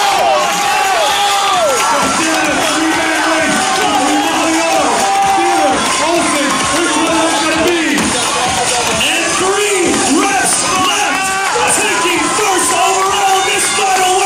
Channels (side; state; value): both; identical; correlation 1.00